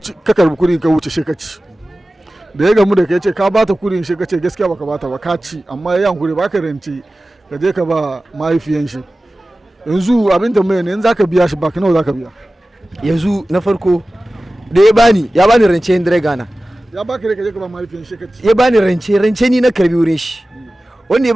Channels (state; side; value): normal; both; correlation 0.96